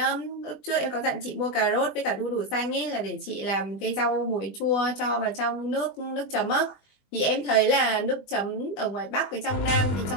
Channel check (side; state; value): right; late; 20 ms